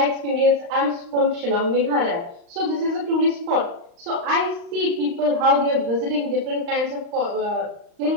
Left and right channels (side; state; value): left; late; 35 ms